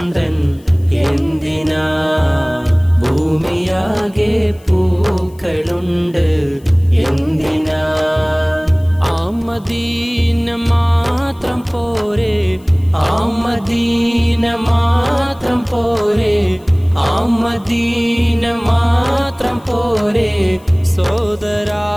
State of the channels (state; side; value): noise; left; hiss, 29 dB below the sound